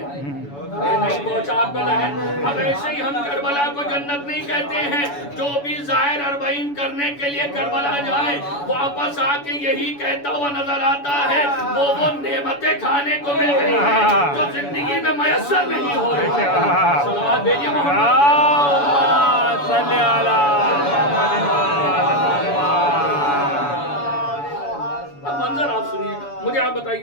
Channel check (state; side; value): late; right; 7.0 ms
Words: نہیں پہنچا آپ کا ذہن. اب ایسے ہی ہم کربلا کو جنت نہیں کہتے ہیں. جو بھی ظاہر اربعین کرنے کے لیے کربلا جائے واپس آ کے یہی کہتا ہوا نظر آتا ہے وہ نعمتیں کھانے کو مل گئی ہیں جو زندگی میں میسر نہیں ہو رہی. صلوات بھیجیے محمد صلی اللہ اب منظر آپ سنیے گا. مجھے آپ